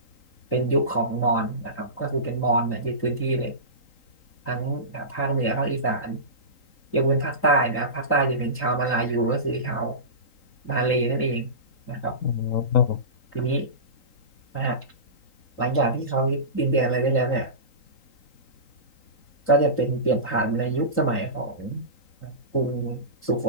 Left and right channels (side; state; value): right; late; 3.8 ms